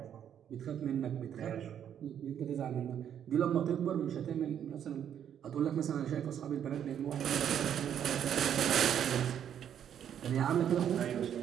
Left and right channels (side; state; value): left; quieter; 9.3 dB